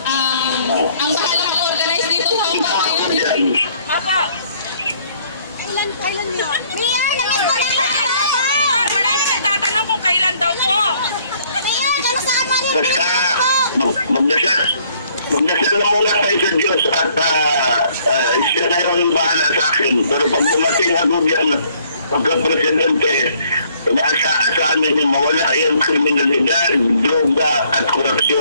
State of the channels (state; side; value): inverted; both; correlation -0.63